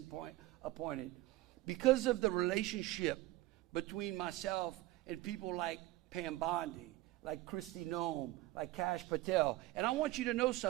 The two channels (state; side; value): quieter; left; 17.5 dB